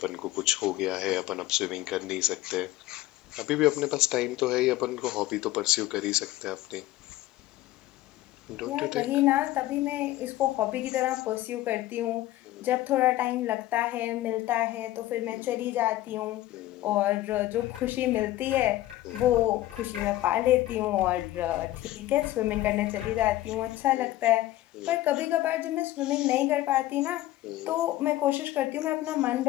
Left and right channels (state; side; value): quieter; right; 15.7 dB